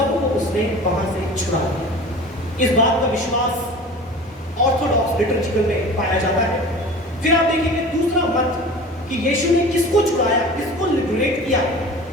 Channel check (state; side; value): normal; both; correlation 0.39